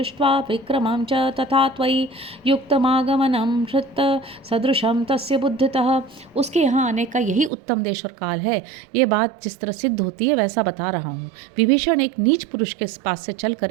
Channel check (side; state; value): left; drops out; at 7.5 s